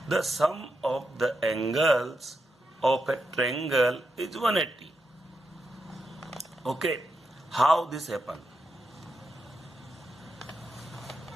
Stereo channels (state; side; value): normal; both; correlation 0.84